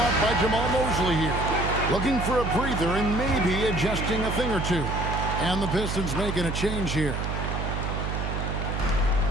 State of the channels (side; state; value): right; noise; hum, 2 dB below the sound